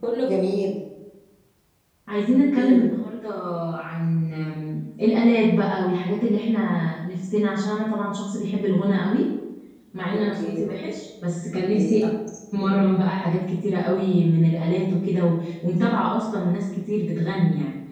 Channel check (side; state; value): both; identical; correlation 1.00